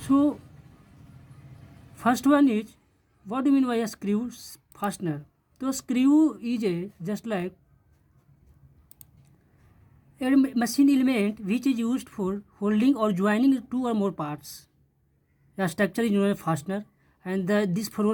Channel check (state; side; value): identical; both; correlation 1.00